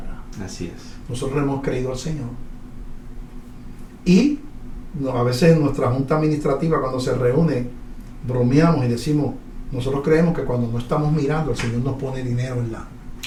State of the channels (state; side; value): identical; both; correlation 1.00